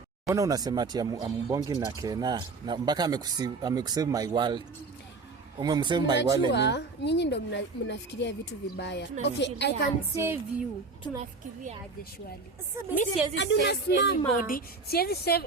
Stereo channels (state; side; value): quieter; left; 4.0 dB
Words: Mbona unasema ati ambongi na Kena na mpaka amekusave my world. Umemsave my world ni. Nyinyi ndo mnafikiria vitu vibaya. Okay, I can save you. Tunafikiria aje shwali? Mimi siwezi save anybody. Siwezi